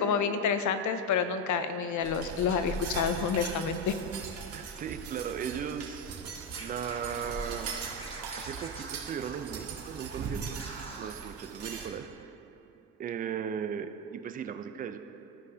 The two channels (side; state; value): both; normal; correlation 0.07